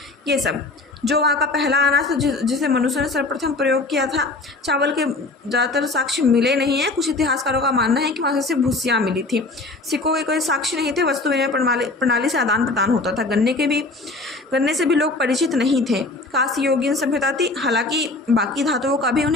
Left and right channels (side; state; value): right; quieter; 3.2 dB